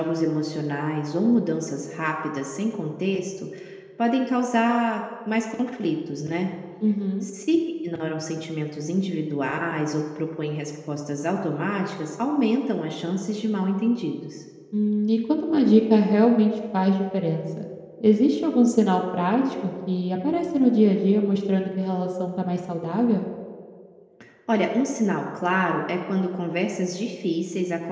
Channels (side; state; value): both; identical; correlation 1.00